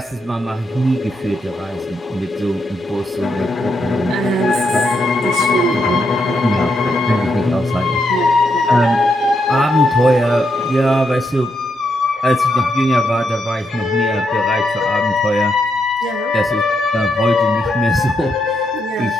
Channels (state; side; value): normal; both; correlation 0.80